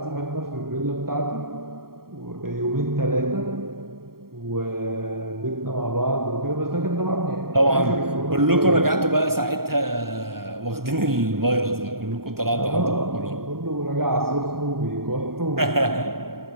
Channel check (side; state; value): left; late; 0.93 ms